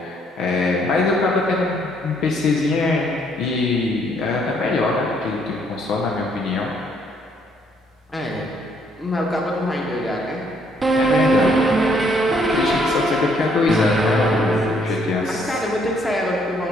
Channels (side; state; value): both; normal; correlation 0.68